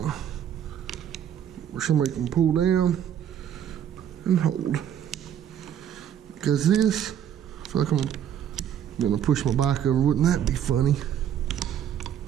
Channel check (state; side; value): quieter; left; 9.7 dB